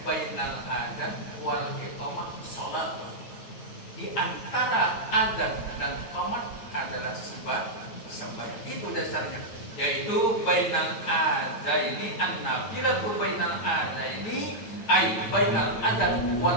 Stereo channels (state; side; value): late; right; 8.8 ms